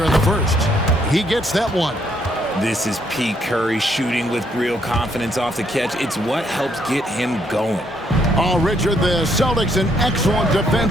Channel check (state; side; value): normal; both; correlation 0.71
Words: in the first. He gets that one. This is Pete Curry shooting with real confidence off the catch. It's what helps get him going. Oh, Richard, the Celtics, an excellent